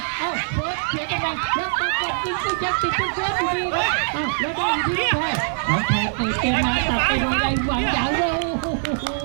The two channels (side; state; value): left; silent; digital silence